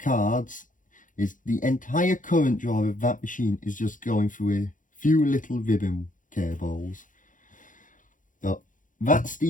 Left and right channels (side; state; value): right; late; 0.38 ms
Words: is the entire current draw of that machine is just going through a few little ribbon cables. But that's